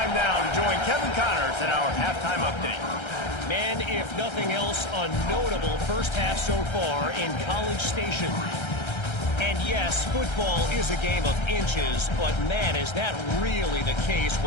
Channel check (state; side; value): late; right; 1.3 ms